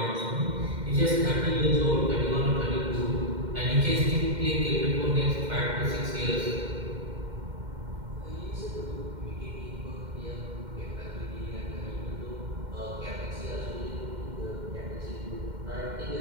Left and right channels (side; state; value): left; late; 2.1 ms